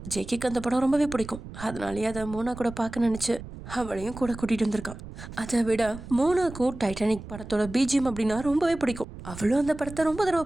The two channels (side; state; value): right; noise; rumble, 13 dB below the sound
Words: ஜேகேக்கு அந்த படம் ரொம்பவே பிடிக்கும், அதனாலேயே அதை மோனா கூட பார்க்க நினச்சி அவளையும் கூட கூட்டிகிட்டு வந்திருக்கான். அதை விட மோனாக்கும் டைட்டானிக் படத்தோட பிஜிஎம் அப்படின்னா ரொம்பவே பிடிக்கும். அவளும் அந்த படத்தை ரொம்ப தடவை